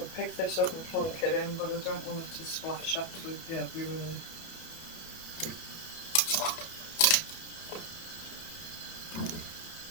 pick this up and plunk it in, but I don't want it to splash absolutely everywhere.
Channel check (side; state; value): right; late; 31 ms